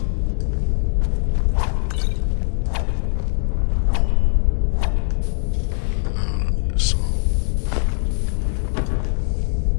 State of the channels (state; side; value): silent; right; digital silence